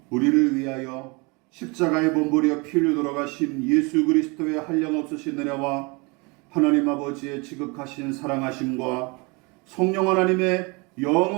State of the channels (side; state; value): left; quieter; 28.5 dB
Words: 우리를 위하여 십자가에 몸부려 피 흘려 돌아가신 예수 그리스도의 한량없으신 은혜와 하나님 아버지의 지극하신 사랑하심과 성령 하나님의